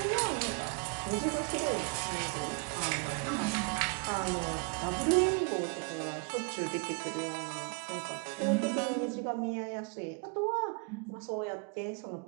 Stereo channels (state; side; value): quieter; left; 33.5 dB